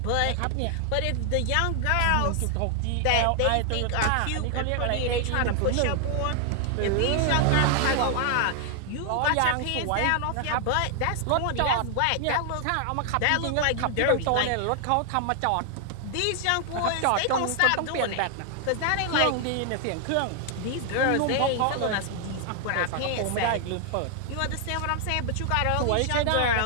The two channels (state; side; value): different; both; correlation 0.00